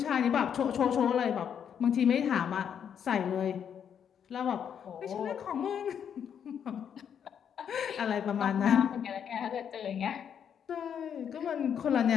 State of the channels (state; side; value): quieter; right; 8.2 dB